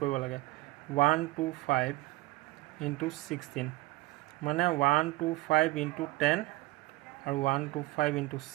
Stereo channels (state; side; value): quieter; left; 19.3 dB